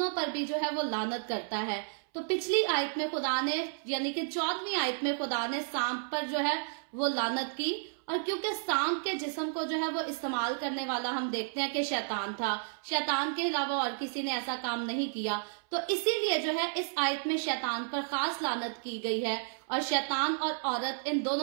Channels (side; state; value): left; silent; 56 dB below the other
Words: पर भी जो है वो लानत करता है। तो पिछली आयत में खुदा ने यानी कि 14वीं आयत में खुदा ने सांप पर जो है वो लानत की, और क्योंकि सांप के जिस्म को जो है वो इस्तेमाल करने वाला हम देखते हैं कि शैतान था, शैतान के अलावा और किसी ने ऐसा काम नहीं किया, तो इसीलिए जो है इस आयत में शैतान पर खास लानत की गई है। और शैतान और औरत इन